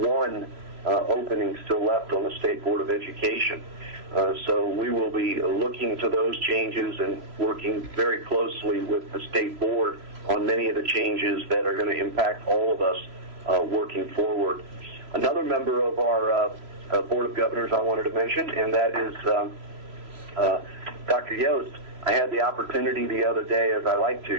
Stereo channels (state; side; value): late; left; 3.0 ms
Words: opening still left on the State Board of Education. So we will be looking to those changes and working very closely with the State Board on many of the changes that are going to impact all of us working forward. Another member of our Board of Governors I wanted to mention, and that is Dr. Yost. I had the opportunity the other day, as I like